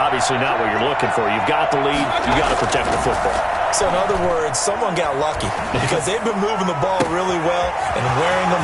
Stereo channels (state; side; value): identical; both; correlation 1.00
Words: not what you're looking for. You've got the lead. You've got to protect the football. So in other words, someone got lucky because they've been moving the ball really well and wearing